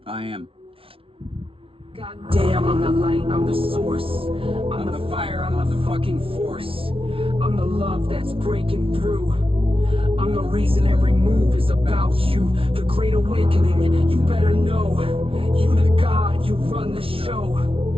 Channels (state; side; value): late; left; 0.26 ms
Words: I Am. God damn, I'm the light, I'm the source. I'm the fire, I'm the fucking force. I'm the love that's breaking through. I'm the reason every move is about you. The great awakening, you better know. You the God, you run the show.